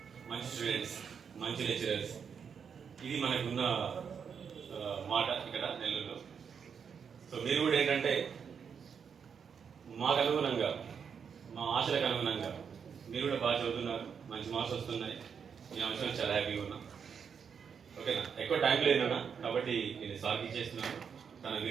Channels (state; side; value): quieter; left; 6.8 dB